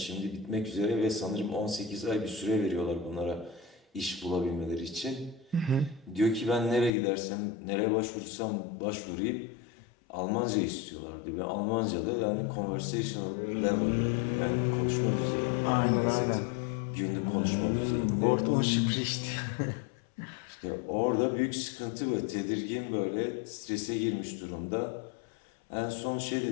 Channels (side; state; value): right; drops out; at 6.9 s